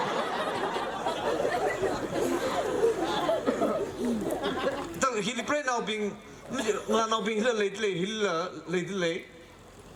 Tao khi pray now bị là nào bị lấy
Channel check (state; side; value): identical; both; correlation 1.00